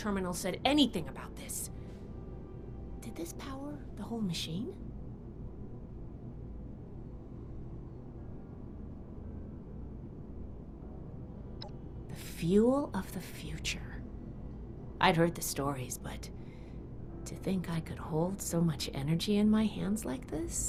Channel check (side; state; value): both; identical; correlation 1.00